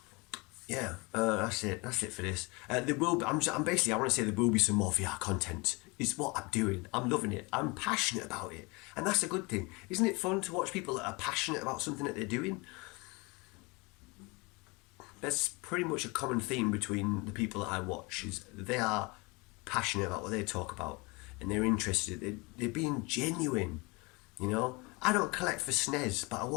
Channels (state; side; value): quieter; right; 26.9 dB